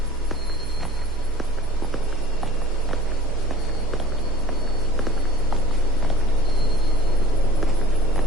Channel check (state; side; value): normal; both; correlation 0.46